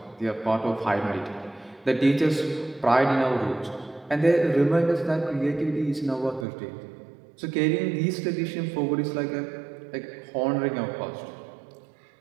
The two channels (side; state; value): left; drops out; at 6.5 s